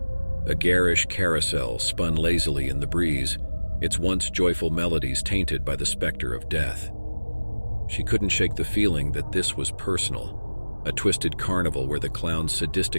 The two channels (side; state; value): both; inverted; correlation -1.00